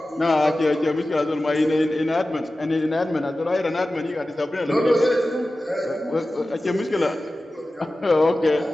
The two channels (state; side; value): normal; both; correlation 0.95